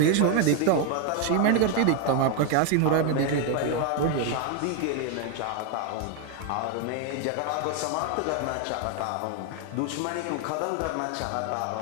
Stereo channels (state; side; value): different; both; correlation 0.01